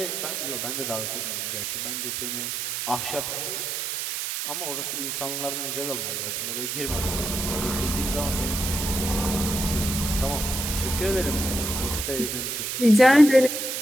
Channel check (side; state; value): right; noise; hiss, 3 dB below the sound